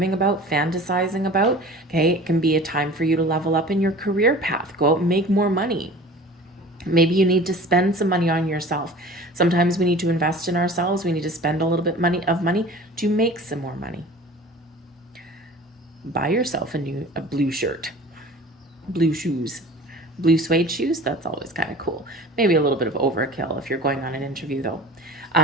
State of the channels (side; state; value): both; normal; correlation 0.42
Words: about, fantasizing about. Okay, it can be a time for you to level up in your career path, go out and make more money. Maybe you need to spend some money on yourself. Sometimes we need to invest in ourselves. We need to spend a little bit of money to make some more money. Buy yourself a blue shirt, blue shoes, blue suede shoes. That's always kind of cool. Maybe a little bit of overkill if you're going on an interview though.